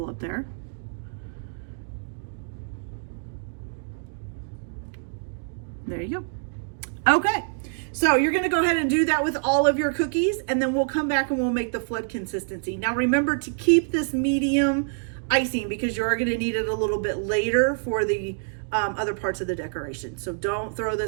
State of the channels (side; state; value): left; silent; digital silence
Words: up there. There you go. Okay, so you're gonna go ahead and do that with all of your cookies, and then we'll come back and we'll make the flood consistency. Now remember to keep this medium icing because you are gonna need it a little bit later for the other parts of the decoration. So don't throw